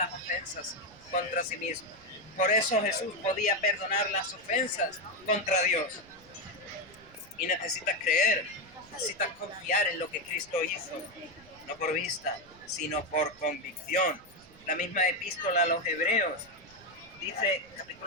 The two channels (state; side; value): noise; right; rumble, 25 dB below the sound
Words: ofensas contra sí mismo. Por eso Jesús podía perdonar las ofensas contra Dios. Y necesitas creer, necesitas confiar en lo que Cristo hizo, no por vista, sino por convicción. La misma epístola a los Hebreos dice,